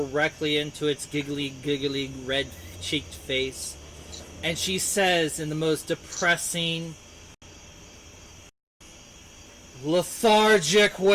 into its giggly, red-cheeked face, and she says in the most depressing, lethargic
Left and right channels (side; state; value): both; identical; correlation 1.00